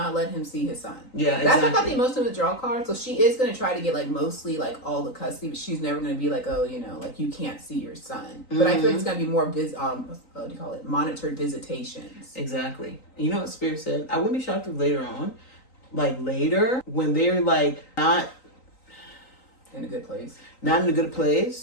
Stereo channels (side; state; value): right; late; 3.9 ms